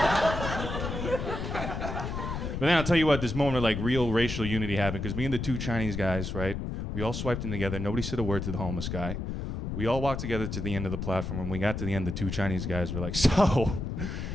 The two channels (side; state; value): left; noise; rumble, 4 dB below the sound